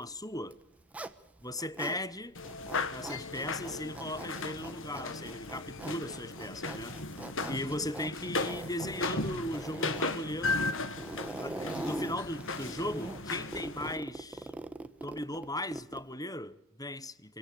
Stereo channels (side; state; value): both; normal; correlation 0.35